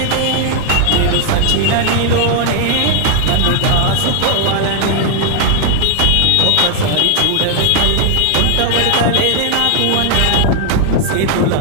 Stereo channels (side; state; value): both; different; correlation 0.00